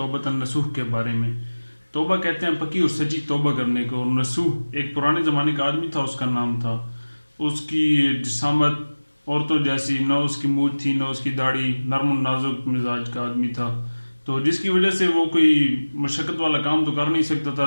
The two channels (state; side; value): inverted; both; correlation -1.00